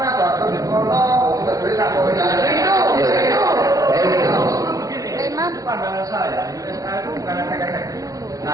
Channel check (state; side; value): late; left; 0.17 ms